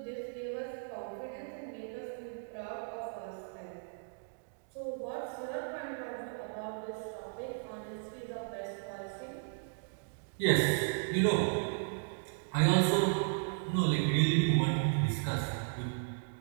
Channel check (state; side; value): silent; left; digital silence